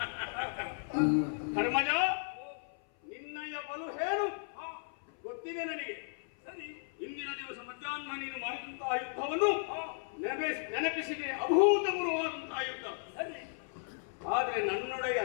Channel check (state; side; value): silent; right; 54 dB below the other